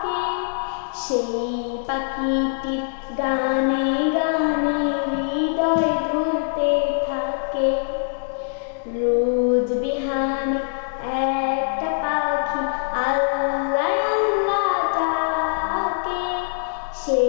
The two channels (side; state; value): right; silent; digital silence